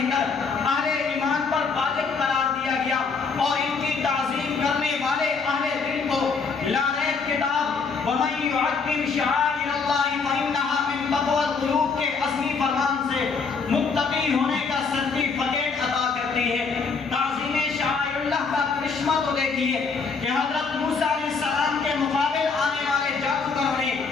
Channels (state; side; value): quieter; right; 4.9 dB